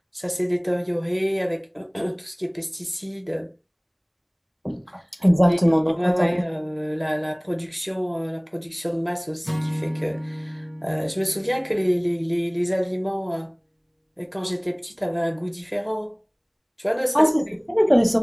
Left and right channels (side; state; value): both; identical; correlation 1.00